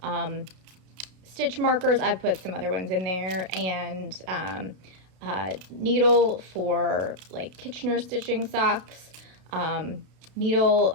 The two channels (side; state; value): left; late; 32 ms